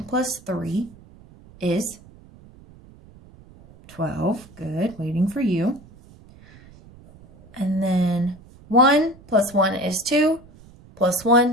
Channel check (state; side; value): noise; right; rumble, 23 dB below the sound